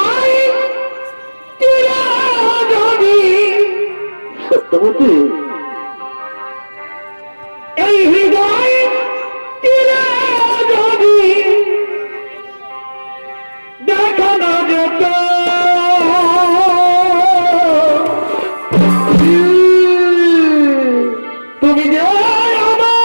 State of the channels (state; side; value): inverted; both; correlation -1.00